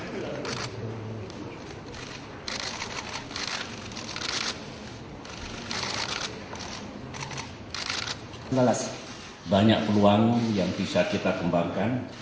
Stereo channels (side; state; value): both; identical; correlation 1.00